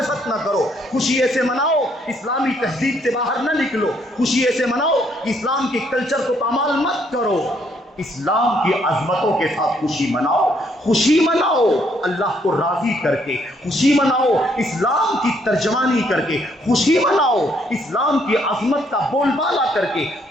نہ کرو، خوشی ایسے مناؤ اسلامی تہذیب سے باہر نہ نکلو، خوشی ایسے مناؤ کہ اسلام کے کلچر کو پامال مت کرو، اسلام کی عظمتوں کے ساتھ خوشی مناؤ، خوشی مناؤ اللہ کو راضی کر کے، خوشی مناؤ اسلام کی ترجمانی کر کے، خوشی مناؤ اسلام کی عظمت کا بول بالا کر کے،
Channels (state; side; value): normal; both; correlation 0.69